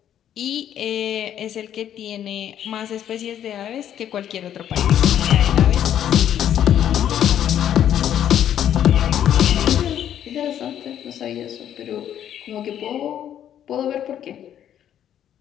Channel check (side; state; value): right; quieter; 10.3 dB